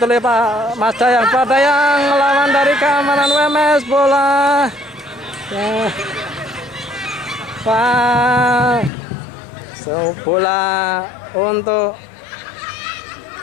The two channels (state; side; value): drops out; right; at 8.9 s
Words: oleh Pak Mas Dayang. Pak Dayang melawan dari keamanan UMS. Bola bola untuk